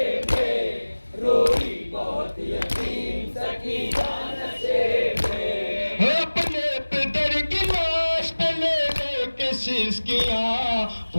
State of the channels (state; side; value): inverted; both; correlation -1.00